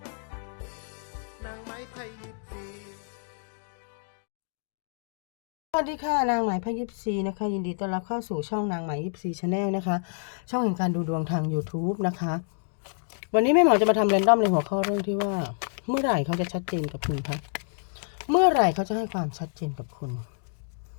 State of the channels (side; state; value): right; silent; digital silence